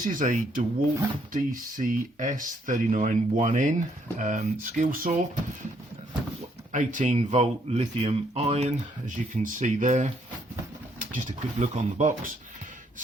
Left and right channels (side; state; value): both; normal; correlation 0.70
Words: is a Dewalt DCS391N skill saw, 18 volt lithium ion, as you can see there. Just a quick look on the box.